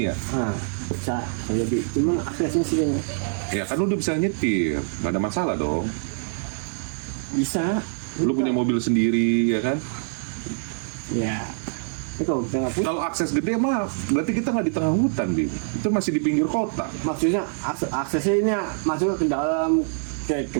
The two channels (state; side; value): silent; left; digital silence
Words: ya. Bisa jadi. Cuman aksesnya sih kayaknya. Ya kan lu udah bisa nyetir, nggak ada masalah dong. Bisa. Lu punya mobil sendiri ya kan? Ya. Itu kalau kita nggak punya. Kalau akses gede mah berarti kita nggak di tengah hutan, Bim. Itu masih di pinggir kota. Maksudnya aksesnya ini masuk ke dalam kayak